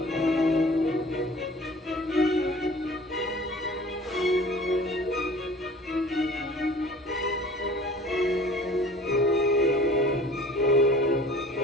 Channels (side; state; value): both; normal; correlation 0.47